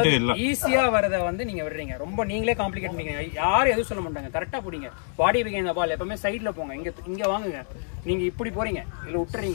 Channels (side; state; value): right; silent; 61 dB below the other